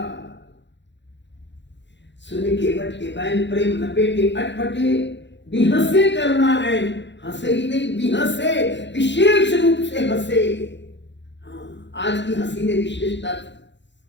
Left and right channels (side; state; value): right; late; 0.52 ms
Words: सुनी केवट के बैन प्रेम लपेटे, अटपटे बिहसे करुणा ऐन। हंसे ही नहीं, बिहसे, विशेष रूप से हंसे। हाँ, आज की हंसी में विशेषता थी,